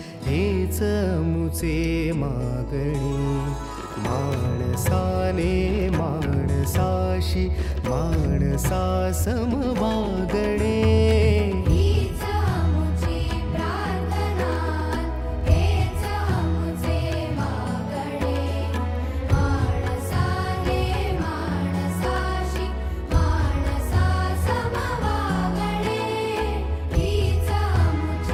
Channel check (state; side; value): identical; both; correlation 1.00